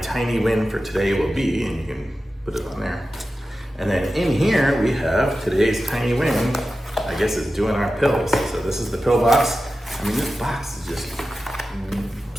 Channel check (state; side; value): normal; both; correlation 0.93